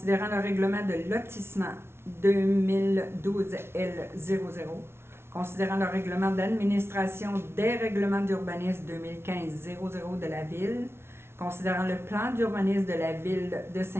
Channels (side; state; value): left; late; 0.12 ms